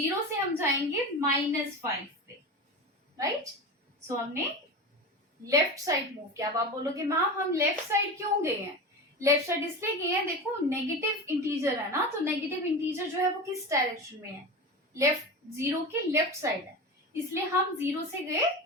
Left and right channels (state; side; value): normal; both; correlation 0.26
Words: से हम जाएंगे -5 पे, राइट. सो हमने लेफ्ट साइड मूव किया. अब आप बोलोगे मैम हम लेफ्ट साइड क्यों गए हैं? लेफ्ट साइड इसलिए गए हैं, देखो नेगेटिव इंटीजर है ना. तो नेगेटिव इंटीजर जो है वो किस डायरेक्शन में है? लेफ्ट. 0 की लेफ्ट साइड है, इसलिए हम 0 से गए